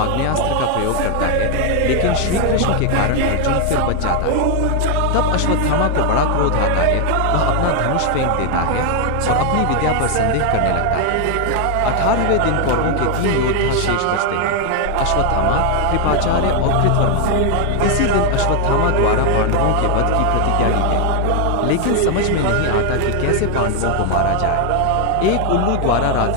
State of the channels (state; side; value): different; both; correlation 0.00